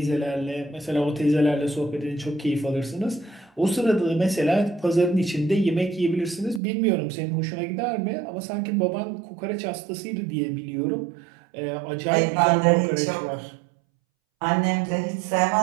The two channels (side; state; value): left; drops out; at 6.6 s